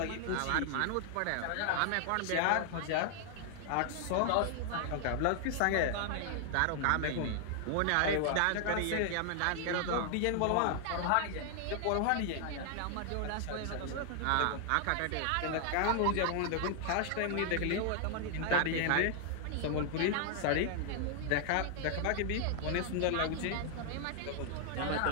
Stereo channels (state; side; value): different; both; correlation 0.00